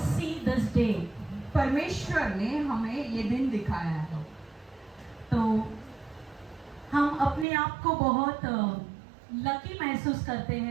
see this day. परमेश्वर ने हमें ये दिन दिखाया है. तो हम अपने आप को बहुत लकी महसूस करते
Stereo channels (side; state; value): left; drops out; at 7.5 s